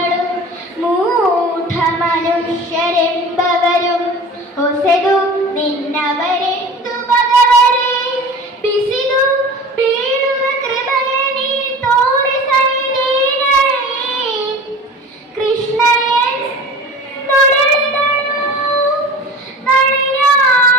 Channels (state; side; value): normal; both; correlation 0.38